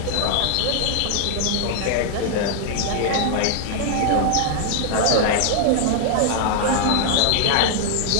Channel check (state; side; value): different; both; correlation 0.00